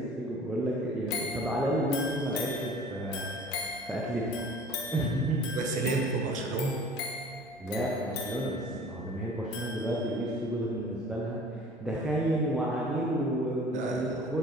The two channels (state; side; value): normal; both; correlation 0.47